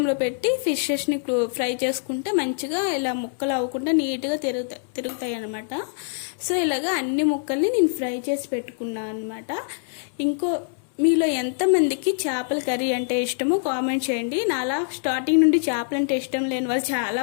పెట్టి ఫిషెస్ని ఫ్రై చేసుకుంటే మంచిగా ఇలా ముక్కలు అవ్వకుండా నీట్గా తిరుగుతాయి అనమాట. సో ఇలాగా అన్ని ముక్కల్ని నేను ఫ్రై చేసి పెట్టుకున్నాను అనమాట. మీలో ఎంతమందికి చేపల కర్రీ అంటే ఇష్టమో కామెంట్ చేయండి. నాలా స్టార్టింగ్ నుండి చేపలు అంటే ఇష్టం లేని వాళ్ళు చాలా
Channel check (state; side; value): silent; right; 62 dB below the other